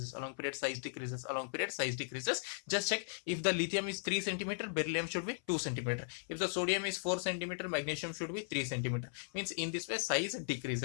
along period size decreases, along period size decreases. Just check. If the lithium is 3 cm, beryllium should be 2 cm. If the sodium is 4 cm, magnesium should be 3 cm. Means in this way size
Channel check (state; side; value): silent; right; 53 dB below the other